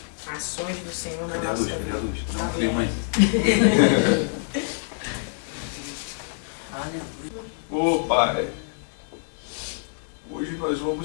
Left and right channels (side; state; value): right; silent; digital silence